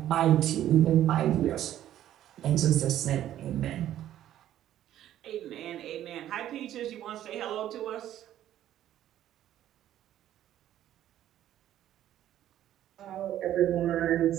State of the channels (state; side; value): quieter; left; 12.1 dB